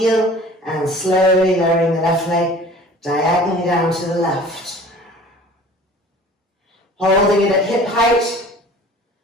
and slowly lowering the left leg diagonally down to the left. Holding it at hip height.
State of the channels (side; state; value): both; normal; correlation 0.46